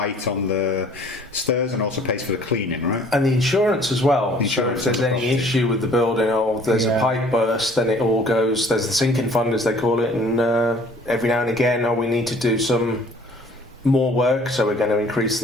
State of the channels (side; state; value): both; normal; correlation 0.54